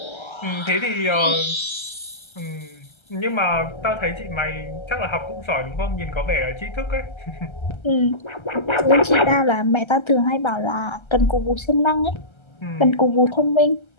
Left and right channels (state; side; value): late; right; 1.3 ms